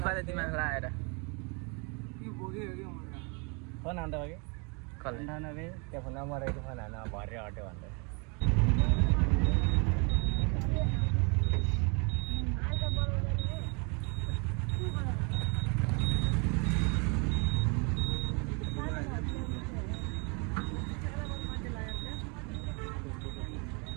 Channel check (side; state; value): left; quieter; 33.3 dB